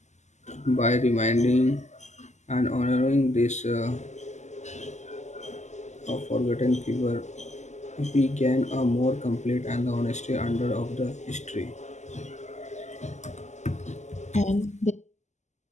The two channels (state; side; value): late; right; 0.33 ms